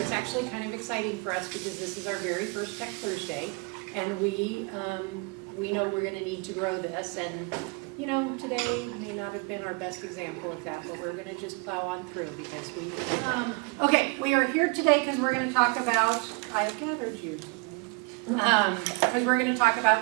actually kind of exciting for us because this is our very first Tech Thursday, and we know we're going to need to grow this, and you know, today may not have been our best example of that, but we're going to just plow on through because we can do that. Okay, we are here today because we're going to talk about, I've gathered you today, because we're going to talk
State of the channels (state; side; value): quieter; left; 30.0 dB